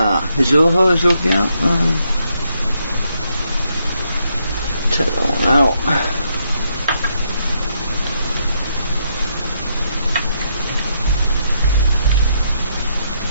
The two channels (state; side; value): inverted; both; correlation -0.76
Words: Is the hole is looking out? Take that one out.